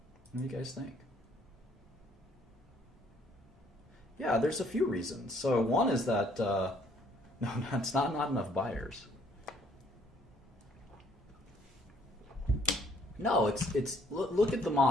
What do you guys think? Yeah, there's a few reasons. So one is that no, it's not enough buyers. No, it's look at the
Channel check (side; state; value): both; normal; correlation 0.64